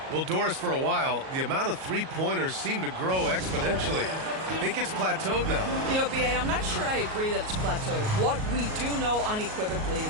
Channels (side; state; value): left; late; 38 ms